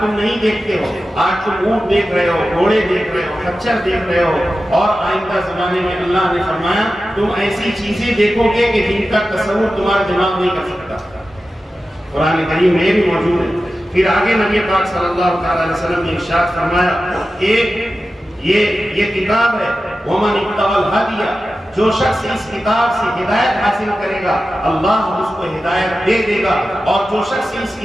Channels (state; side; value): normal; both; correlation 0.93